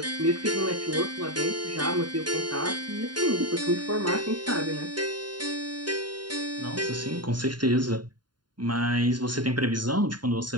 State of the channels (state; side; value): late; left; 0.71 ms